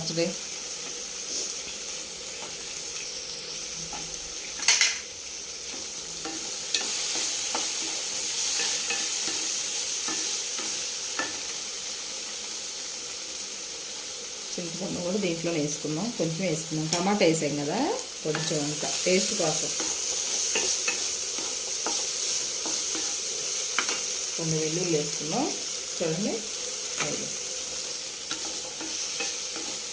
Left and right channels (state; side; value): identical; both; correlation 1.00